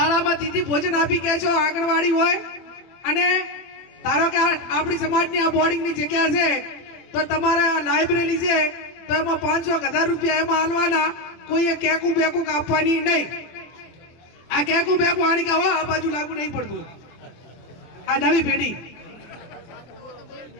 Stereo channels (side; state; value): right; late; 24 ms